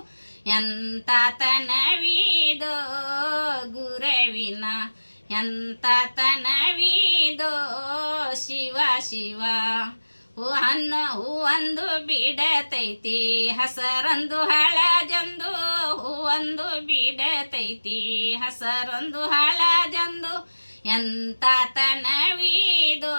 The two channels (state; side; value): inverted; both; correlation -1.00